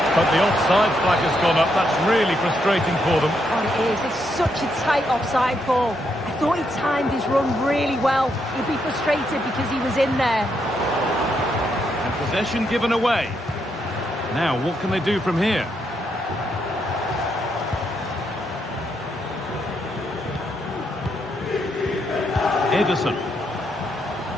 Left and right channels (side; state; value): both; normal; correlation 0.78